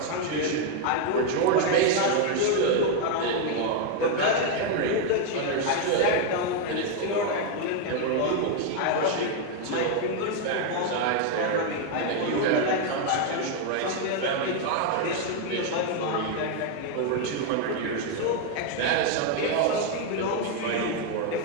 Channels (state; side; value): different; both; correlation 0.01